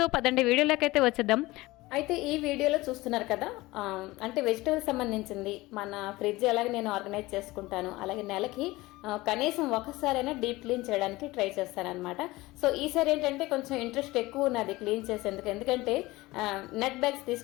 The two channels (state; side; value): quieter; right; 20.0 dB